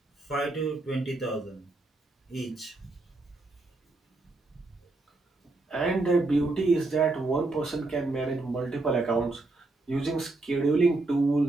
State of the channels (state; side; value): quieter; left; 3.1 dB